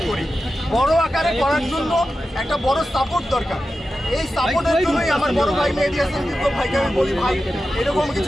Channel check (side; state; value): both; normal; correlation 0.92